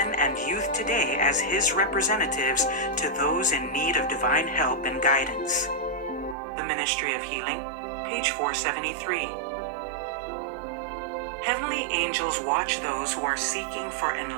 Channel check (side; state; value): left; drops out; at 6.4 s